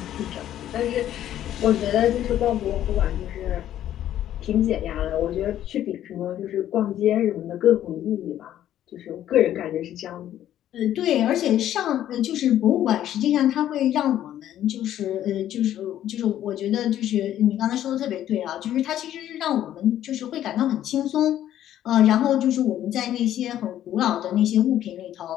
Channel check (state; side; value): quieter; right; 11.8 dB